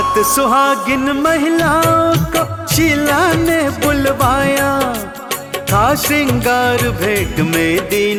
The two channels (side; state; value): both; identical; correlation 1.00